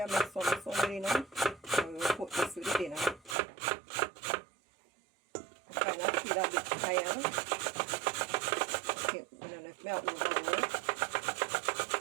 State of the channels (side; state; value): left; drops out; at 3.4 s